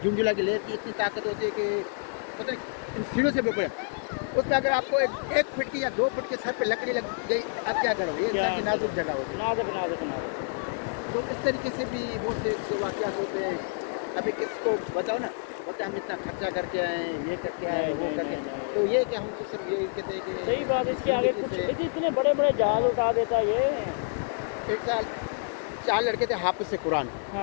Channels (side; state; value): right; silent; digital silence